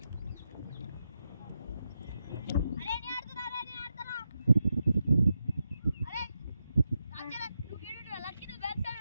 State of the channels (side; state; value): both; inverted; correlation -0.87